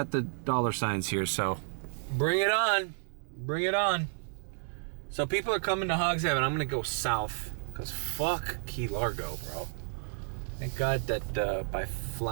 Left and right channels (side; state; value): left; silent; 57 dB below the other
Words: the dollar signs here, so bring it on. Bring it on. So people are coming to Hog Heaven. I'm going to go south, because fuck Key Largo, bro. Thank God that by